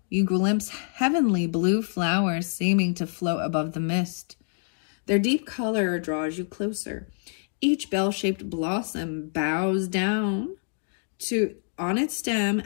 you glimpse heavenly blue flowers seeming to float above the mist. Their deep color draws you closer. Each bell-shaped blossom bows down on its stem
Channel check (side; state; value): right; silent; 57 dB below the other